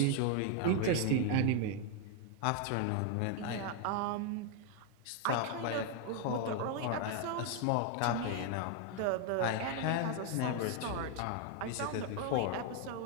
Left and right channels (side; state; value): both; different; correlation 0.00